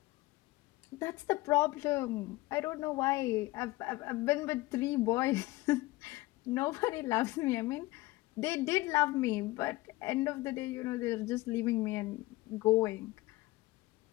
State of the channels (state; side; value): quieter; right; 19.6 dB